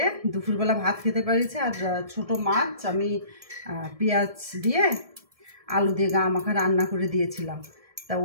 দুপুরবেলা ভাত খেতে পারিছে। আর ছোটো মাছ আমি পেঁয়াজ দিয়ে আলু দিয়ে গা মাখা রান্না করে দিয়েছিলাম। তা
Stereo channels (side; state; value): left; late; 1.7 ms